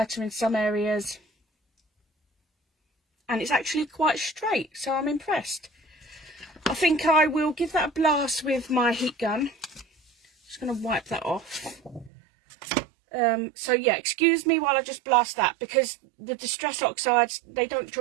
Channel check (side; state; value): left; drops out; at 12.1 s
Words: in some areas. And it's actually quite straight, so I'm impressed. I think I will give that a blast with my heat gun. Just going to wipe that off. So yeah, excuse me while I just blast that, because the Distress Oxides, they don't